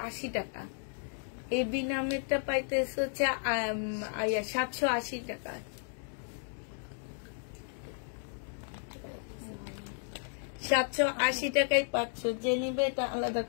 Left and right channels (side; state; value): right; silent; 55 dB below the other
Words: টাকা। এই বিনা মিটটা পাইতেছে হচ্ছে 780 টাকা। 780 টাকায় পাচ্ছ। যে নিবে এটা আলাদা